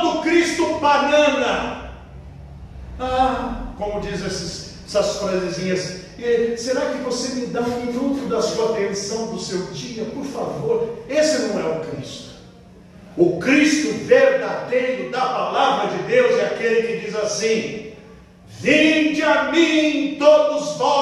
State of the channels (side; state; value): both; identical; correlation 1.00